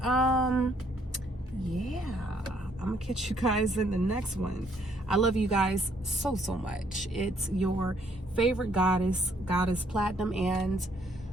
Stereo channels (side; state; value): both; normal; correlation 0.68